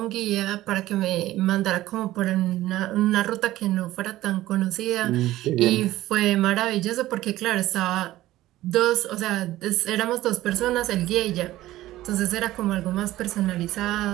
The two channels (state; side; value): quieter; left; 15.7 dB